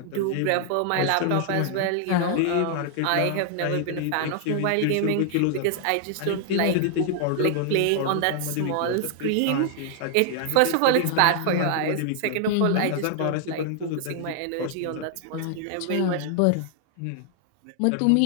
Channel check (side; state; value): both; different; correlation 0.00